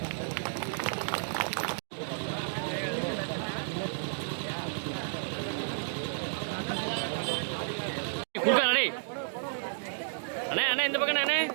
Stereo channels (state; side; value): silent; left; digital silence